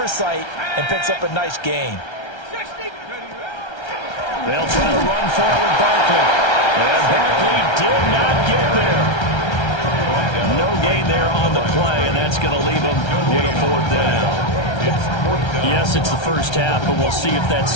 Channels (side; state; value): right; late; 1.3 ms